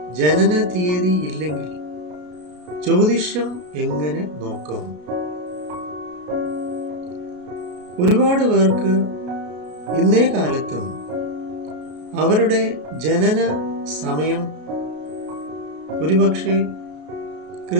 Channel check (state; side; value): late; left; 33 ms